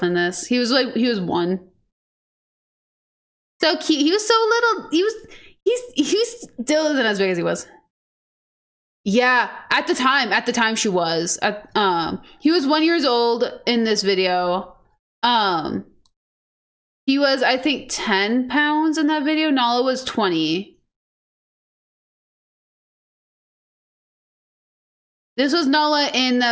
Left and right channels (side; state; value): both; identical; correlation 1.00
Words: in this. He was one. So cute. He was so little. He's still isn't as big as he was. Yeah, at the time she was. He was 1 year old in this video. He was, I think, 10 pounds in that video. Nala was 20. This was Nala in